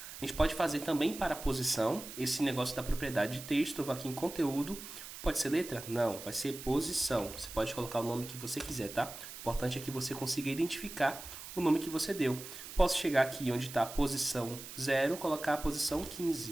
A gente pode fazer também para a posição, esse negócio da propriedade de texto. Eu vou aqui em conteúdo, pode ser letra? Não, vai ser posição. Você pode colocar o nome que você quiser, tá? O importante é que você consiga identificar o nome que você deu. Posso chegar aqui onde está a posição 0, colocar a posição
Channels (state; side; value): noise; right; hiss, 12 dB below the sound